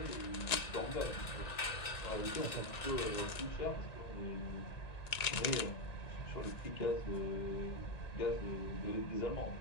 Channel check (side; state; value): right; late; 1.9 ms